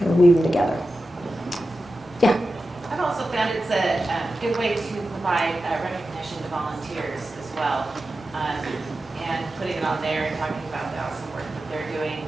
of weave them together. Yeah. I've also found it's a good way to provide recognition to volunteers as well, and putting it on there and talking about the awesome work that they're doing.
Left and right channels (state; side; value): normal; both; correlation 0.92